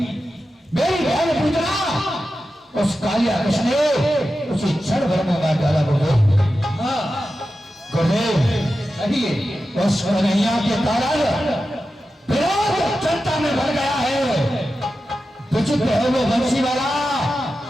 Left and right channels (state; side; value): normal; both; correlation 0.92